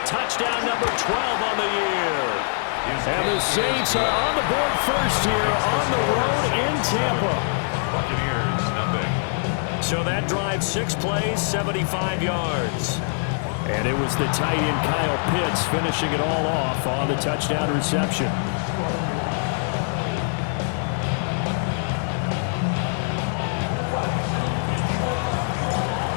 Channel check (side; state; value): right; silent; 63 dB below the other